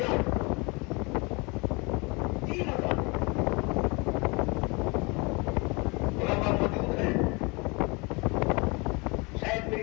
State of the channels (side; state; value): right; quieter; 28.2 dB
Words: 3 اذانیں. علماء موجود ہیں، شاید میری